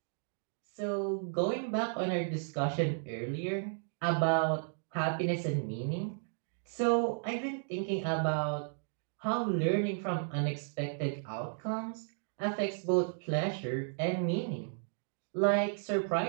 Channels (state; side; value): silent; left; digital silence